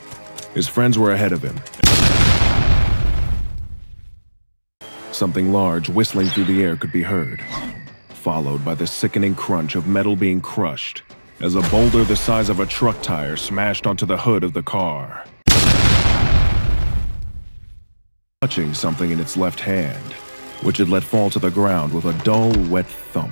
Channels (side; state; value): both; inverted; correlation -1.00